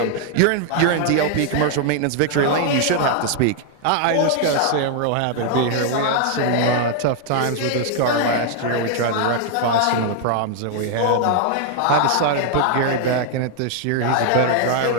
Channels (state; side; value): different; both; correlation 0.00